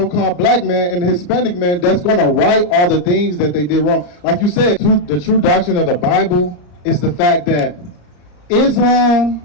black man and the Hispanic man that's going to right all the things that they did wrong. Like you said, the true doctrine of the Bible is the fact that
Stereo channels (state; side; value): late; right; 34 ms